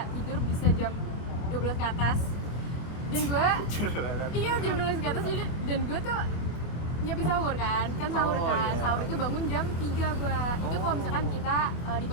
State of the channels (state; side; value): late; right; 25 ms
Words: tidur bisa jam 12 ke atas. Dan gue iya jam 12 ke atas jadi, dan gue tuh nyiapin sahur kan sahur Oh, kan iya. sahur itu bangun jam 3 gue. Itu kalau misalkan kita di